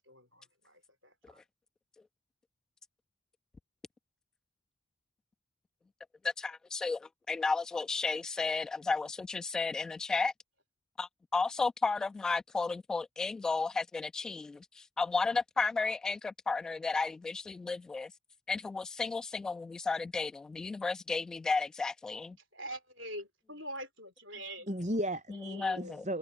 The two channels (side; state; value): right; quieter; 3.4 dB